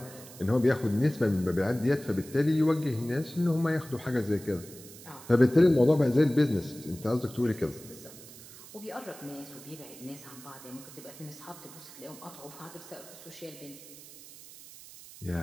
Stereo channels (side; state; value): right; noise; hiss, 17 dB below the sound